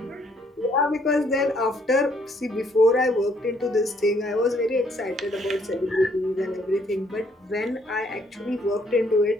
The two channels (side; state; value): both; normal; correlation 0.67